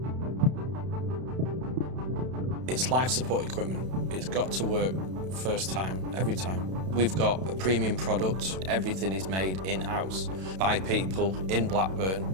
It's life support equipment. It's got to work first time, every time. We've got a premium product. Everything is made in-house by people in Blackburn,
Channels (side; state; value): left; late; 32 ms